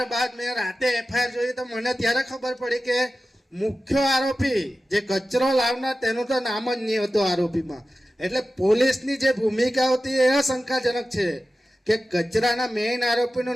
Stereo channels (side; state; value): both; normal; correlation 0.94